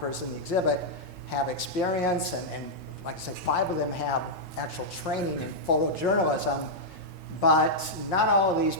in the exhibit have experience, and like I say, 5 of them have actual training in photojournalism, but not all of these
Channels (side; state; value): both; normal; correlation -0.07